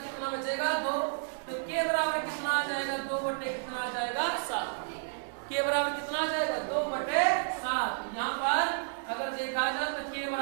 बचेगा 2, तो के बराबर कितना आ जाएगा 2 बटे कितना आ जाएगा 7, के बराबर कितना आ जाएगा 2 बटे 7। यहाँ पर अगर देखा जाए तो के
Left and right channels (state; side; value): silent; left; 57 dB below the other